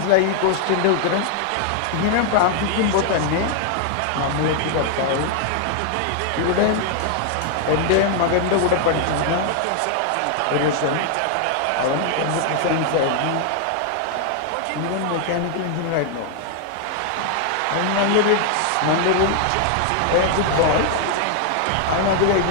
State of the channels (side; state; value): both; different; correlation 0.00